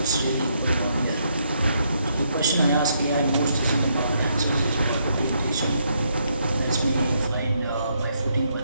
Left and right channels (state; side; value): inverted; both; correlation -0.75